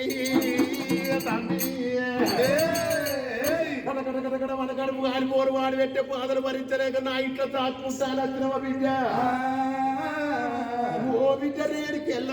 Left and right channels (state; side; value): identical; both; correlation 1.00